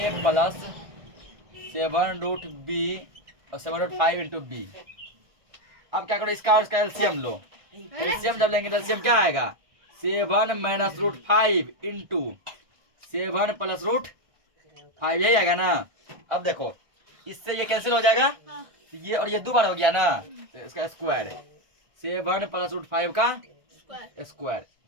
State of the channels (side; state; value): left; late; 1.6 ms